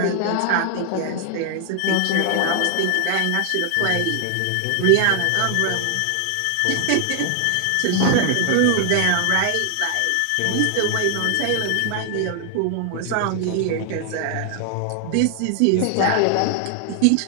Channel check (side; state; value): both; different; correlation 0.00